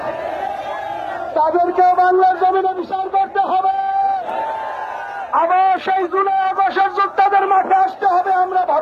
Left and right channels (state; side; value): identical; both; correlation 1.00